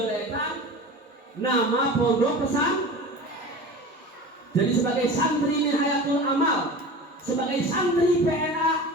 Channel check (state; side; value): normal; both; correlation 0.35